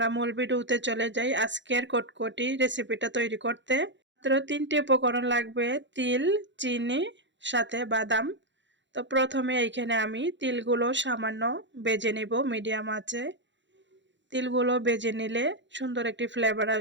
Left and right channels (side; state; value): left; late; 0.53 ms